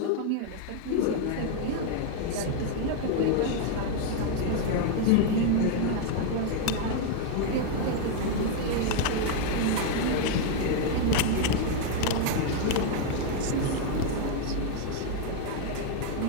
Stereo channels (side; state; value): both; different; correlation 0.01